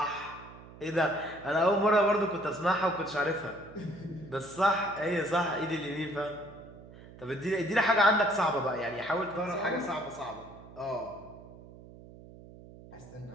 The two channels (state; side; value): noise; right; hum, 18 dB below the sound